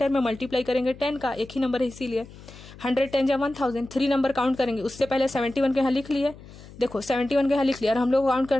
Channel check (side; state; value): left; noise; hum, 19 dB below the sound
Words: में मल्टीप्लाई करेंगे 10 का, एक ही नंबर है इसीलिए 100 10 जा 1000। 3 नंबर काउंट करेंगे, उससे पहले 71 के यहाँ लिख लिए, देखो 71 के यहाँ लिख लिया और हम लोग काउंट